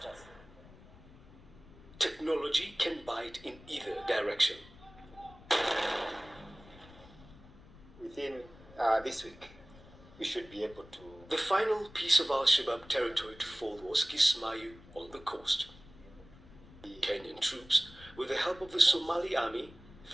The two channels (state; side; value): noise; left; rumble, 21 dB below the sound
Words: Technology can bite in either direction. Within this week, we should be able to... The final piece of Al-Shabaab territory to fall was Kismayo on the coast. Kenyan troops, with the help of the Somali army,